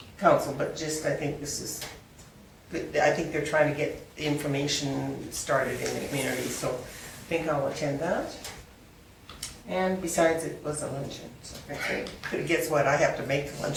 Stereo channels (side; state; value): both; identical; correlation 1.00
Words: council, but just, I think this is good. I think they're trying to get the information started in the community, so I think I'll attend that. And besides, it was a luncheon, so. Okay. But guess what, I have to make the